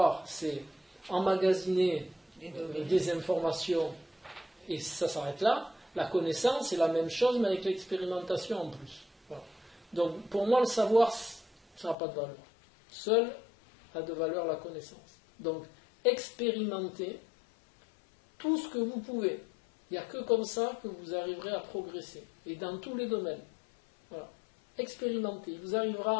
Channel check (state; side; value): drops out; right; at 12.0 s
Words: c'est emmagasiner des informations et ça s'arrête là. La connaissance, c'est la même chose, mais avec l'expérimentation en plus. Voilà. Donc, pour moi, le savoir, ça n'a pas de valeur. Seul a de valeur la connaissance. Donc, expérimentez tout ce que vous pouvez. Il n'y a que comme ça que vous arriverez à progresser. Et dans tous les domaines. Voilà. Expérimentez. Il vous